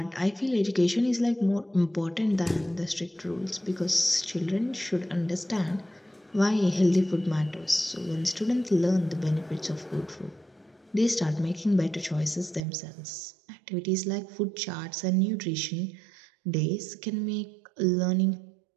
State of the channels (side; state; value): left; drops out; at 12.6 s